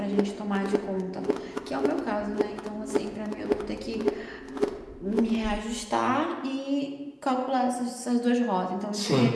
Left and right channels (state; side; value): identical; both; correlation 1.00